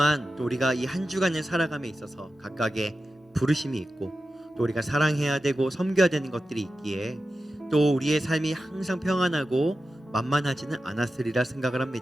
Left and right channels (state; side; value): normal; both; correlation 0.92